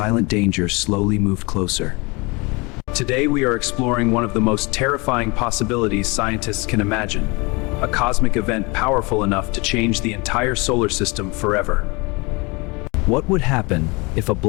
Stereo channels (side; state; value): right; quieter; 27.3 dB